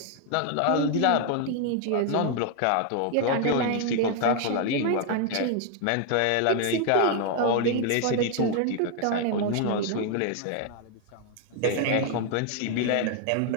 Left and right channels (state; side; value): different; both; correlation 0.00